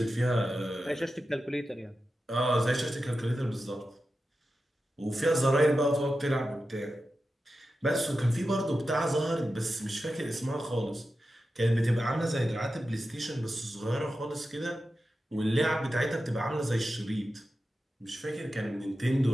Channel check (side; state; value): both; normal; correlation 0.91